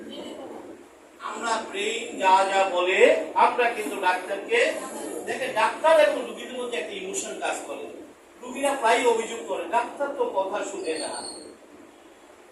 আমরা ব্রেইন যা যা বলে আমরা কিন্তু ডাক্তারকে দেখে। ডাক্তার এবং রোগীদের মধ্যে একটা ইমোশন কাজ করে। রোগীরা প্রায় অভিযোগ করে ডাক্তার তো কথা শুনে না,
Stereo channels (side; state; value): both; identical; correlation 1.00